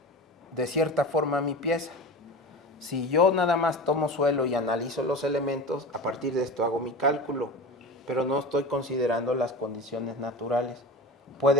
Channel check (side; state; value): both; normal; correlation 0.31